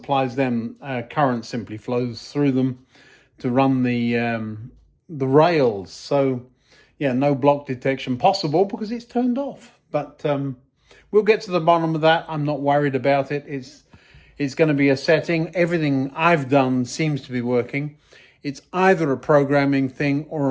them. Current simply flows through them to run the rails. So, yeah, no block detection possible because it's turned off. But we'll get to the bottom of that. I'm not worried about it. It's going to be a setting. Everything I've done seems to be working. It's either a programming thing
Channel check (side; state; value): both; identical; correlation 1.00